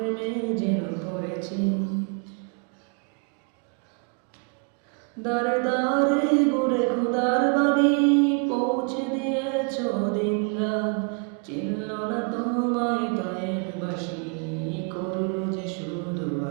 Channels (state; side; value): quieter; left; 36.1 dB